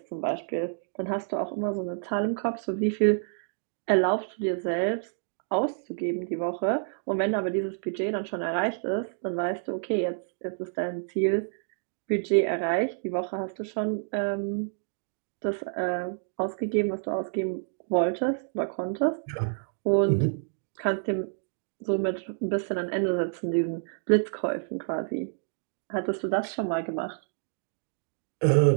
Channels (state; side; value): silent; left; digital silence